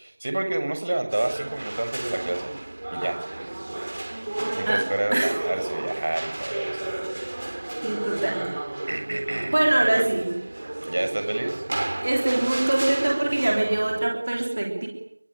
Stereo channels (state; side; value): inverted; both; correlation -1.00